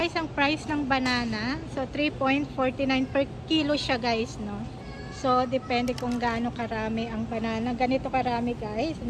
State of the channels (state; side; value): identical; both; correlation 1.00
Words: ang price ng banana, so 3.49 per kilo siya guys, no? So depende kung gaano karami ang banana. Ganito karami guys.